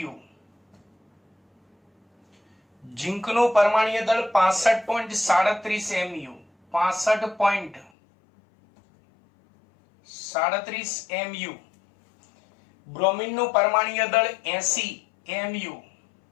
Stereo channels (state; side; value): drops out; right; at 7.9 s